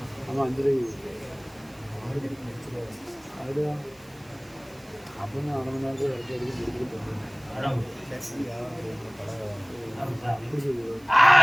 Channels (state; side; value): noise; right; hiss, 27 dB below the sound